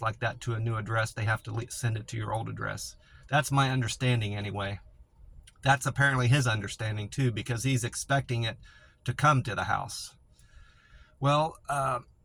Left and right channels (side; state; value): both; identical; correlation 1.00